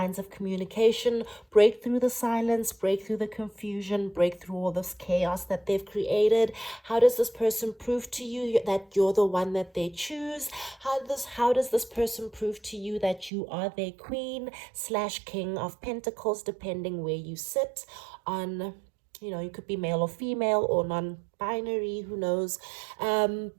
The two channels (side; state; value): left; drops out; at 13.3 s